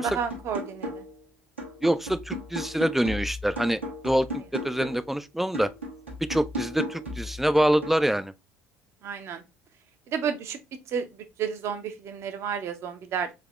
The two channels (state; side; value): normal; both; correlation 0.84